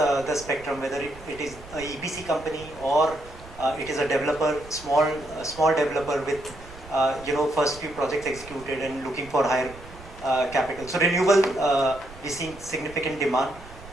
spectrum, whether it is a EPC company or it is a developer, small developer with first few projects executed and looking for higher capital. So renewable, we see significant demand.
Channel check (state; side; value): noise; right; rumble, 18 dB below the sound